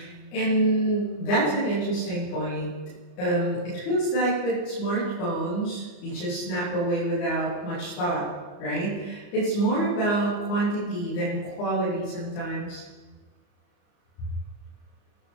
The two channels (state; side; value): late; right; 34 ms